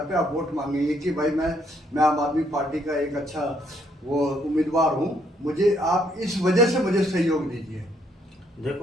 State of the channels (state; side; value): normal; both; correlation 0.70